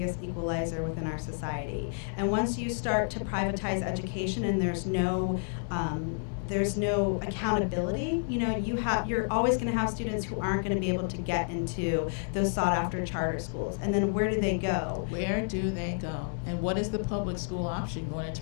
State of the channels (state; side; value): silent; right; 58 dB below the other